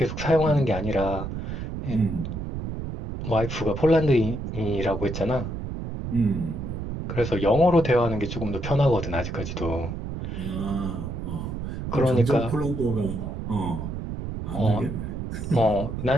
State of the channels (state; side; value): noise; right; rumble, 6 dB below the sound